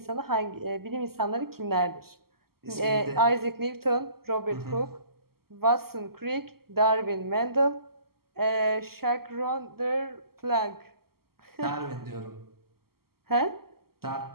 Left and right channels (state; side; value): late; left; 0.94 ms